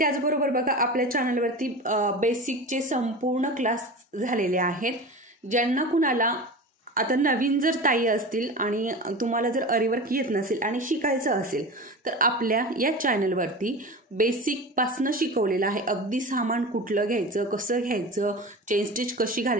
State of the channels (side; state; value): both; normal; correlation 0.31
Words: बघा, आपल्या चॅनलवरती बेसिकचे संपूर्ण क्लास झालेले आहेत। ज्यांना कुणाला आता नवीन जर ताई असतील आणि तुम्हाला जर अरीवर्क येत नसेल आणि शिकायचं असेल तर आपल्या या चॅनलवरती बेसिकपासनं शिकवलेलं आहे। अगदी सामान कुठलं घ्यायचं, कसं घ्यायचं, चेन स्टिच कशी